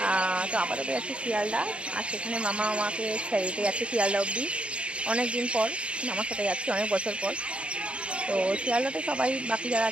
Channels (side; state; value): left; late; 0.059 ms